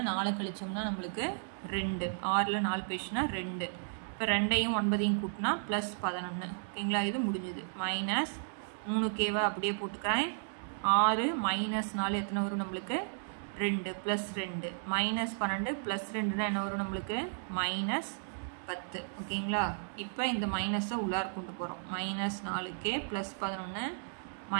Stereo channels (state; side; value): silent; left; digital silence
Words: 4 கழிச்சோம்னா நம்மளுக்கு 2 6ல் 4 போயிடுச்சுன்னா 2 இப்போ 2ஐயும் 9ஐயும் கூட்டினா +11 ஓகேங்களா. இது முடிஞ்சுது. -3kவை அப்படியே போட்டுக்கிறேன். 6 -4 எத்தனை வரும் நம்மளுக்கு 2 +2 -12 +2 என்ன வரும் நம்மளுக்கு 10 ஓகேங்களா. இப்போ இந்த மைனஸை உள்ளார கொண்டு போகிறோம். -4k + 11